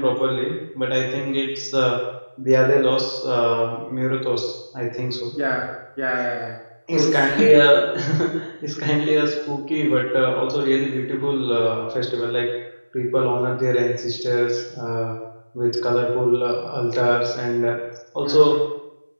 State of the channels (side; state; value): both; inverted; correlation -1.00